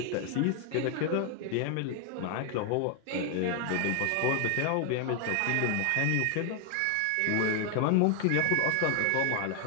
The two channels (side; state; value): both; different; correlation 0.01